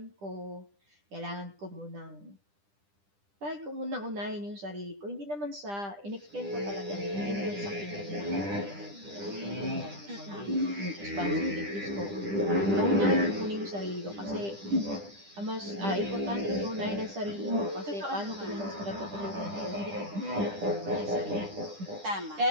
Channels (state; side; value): late; left; 10 ms